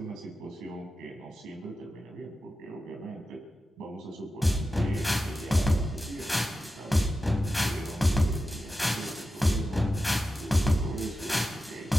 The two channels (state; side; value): normal; both; correlation 0.92